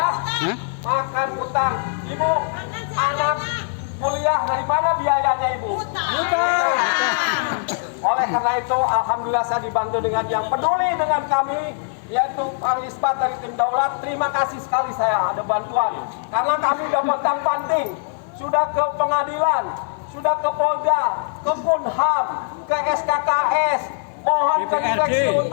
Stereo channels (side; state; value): right; silent; 56 dB below the other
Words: makan utang. Ibu, anak kuliah dari mana biayanya ibu? Oleh karena itu, alhamdulillah saya dibantu dengan yang peduli dengan kami, yaitu Pak Isbat dari tim Daulat. Terima kasih sekali saya ada bantuan. Karena kami sudah pontang-panting, sudah ke pengadilan, sudah ke Polda, ke Punham, ke SKKS, mohon ke direksi